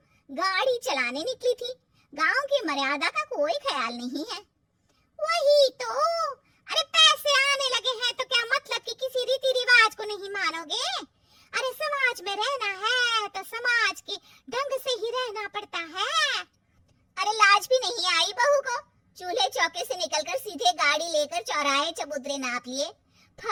गाड़ी चलाने निकली थी, गांव की मर्यादा का कोई ख्याल नहीं है। वही तो, अरे पैसे आने लगे हैं तो क्या मतलब कि किसी रीति रिवाज को नहीं मानोगे? अरे समाज में रहना है तो समाज के ढंग से ही रहना पड़ता है। अरे लाज भी नहीं आई बहू को? चूल्हे चौके से निकलकर सीधे गाड़ी लेकर चौराहे चबूतरे नाप लिए,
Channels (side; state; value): both; identical; correlation 1.00